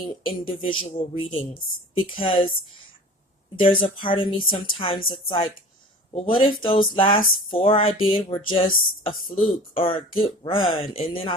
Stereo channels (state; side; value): normal; both; correlation 0.41